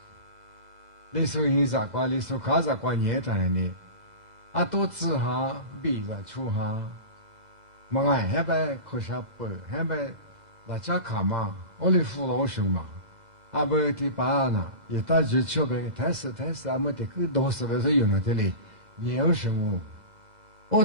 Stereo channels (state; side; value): late; left; 2.0 ms